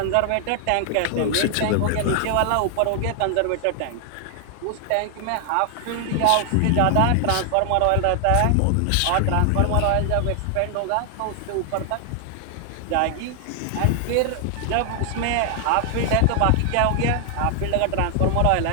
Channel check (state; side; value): different; both; correlation 0.00